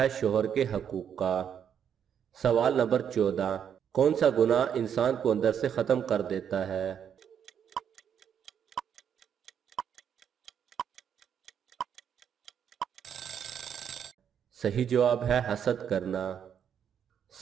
شوہر کے حقوق کا۔ سوال نمبر 14، کون سا گناہ انسان کو اندر سے ختم کر دیتا ہے؟ صحیح جواب ہے حسد کرنا۔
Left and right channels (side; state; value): left; quieter; 8.4 dB